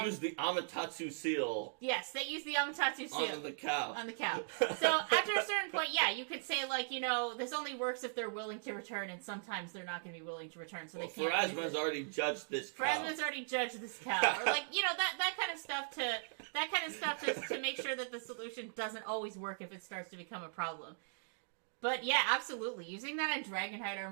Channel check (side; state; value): left; silent; digital silence